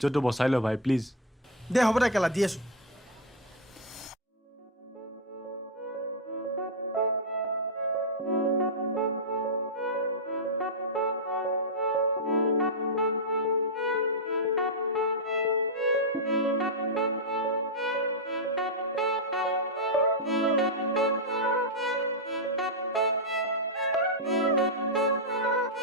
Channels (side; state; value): both; normal; correlation -0.01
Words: বচাই ল ভাই প্লিজ দে হ'ব দে কেলা দি আছো